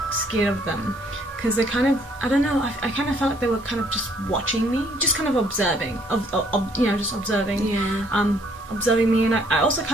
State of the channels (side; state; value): both; normal; correlation 0.64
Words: scared of them. Because they kind of, I don't know, I kind of felt like they were kind of just watching me, just kind of observing, just observing, observing me, and I also